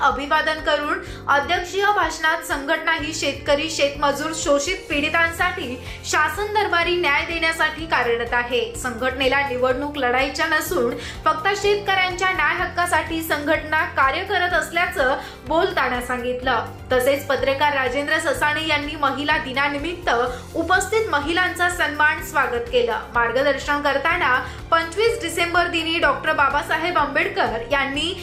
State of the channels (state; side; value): identical; both; correlation 1.00